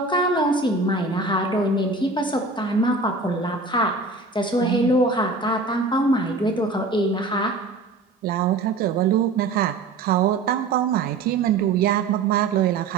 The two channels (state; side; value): quieter; left; 3.6 dB